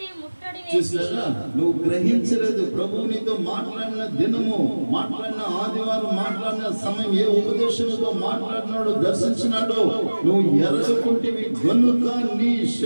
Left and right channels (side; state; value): both; inverted; correlation -1.00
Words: చూసారా? నువ్వు గ్రహించలేదు. ప్రభువు నీతో మాట్లాడిన దినము, మాట్లాడిన ఆదివారం, మాట్లాడిన సమయం, ఏ ఉపదేశంతో మాట్లాడినాడో, దర్శించినాడో నువ్వు ఎరగకుంటివి గనుక నీ